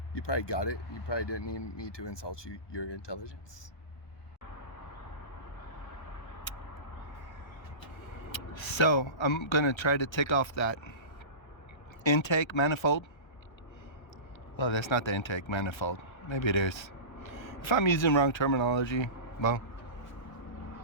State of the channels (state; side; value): late; right; 1.3 ms